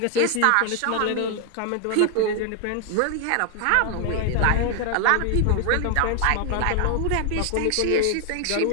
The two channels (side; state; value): both; different; correlation 0.00